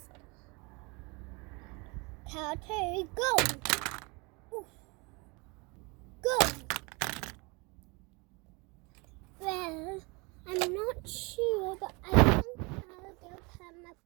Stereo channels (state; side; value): quieter; left; 28.3 dB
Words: Cow 2, go! Oof. Go! Well, I'm not sure, but I think I'll give him a